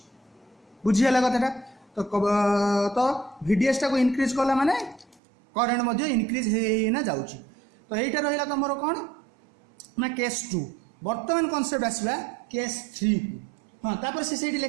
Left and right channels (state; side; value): drops out; left; at 5.2 s